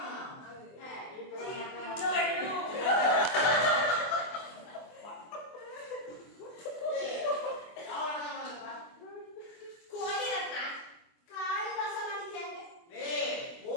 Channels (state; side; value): late; right; 24 ms